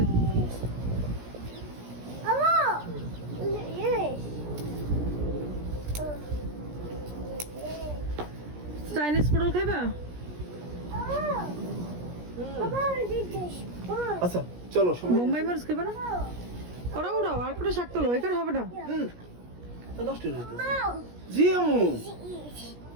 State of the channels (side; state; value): left; late; 17 ms